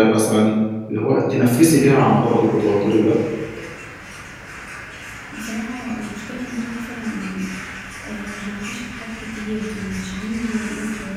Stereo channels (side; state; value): both; identical; correlation 1.00